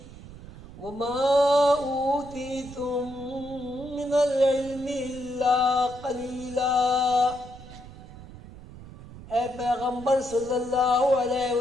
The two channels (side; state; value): right; noise; rumble, 16 dB below the sound